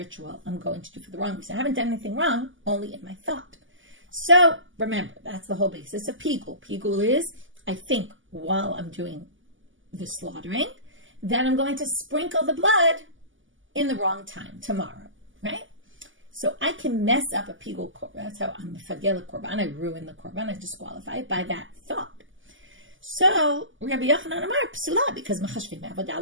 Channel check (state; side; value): late; left; 0.57 ms